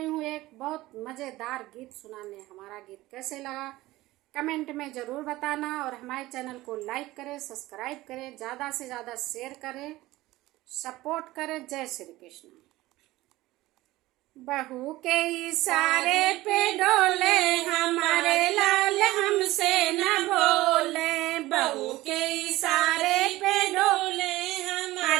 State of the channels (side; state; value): left; quieter; 17.9 dB